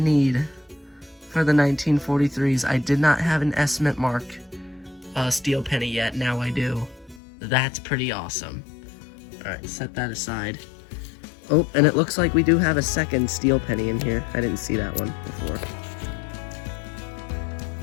for the 1943s. I did not have an S mint mark steel penny yet. Now I do. That's pretty awesome. Alright, set that aside. Oh, and it looks like we do have a second steel penny in here. I didn't see that one before.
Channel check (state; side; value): drops out; right; at 7.2 s